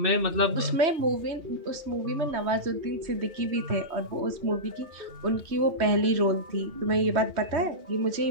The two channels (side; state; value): left; late; 3.2 ms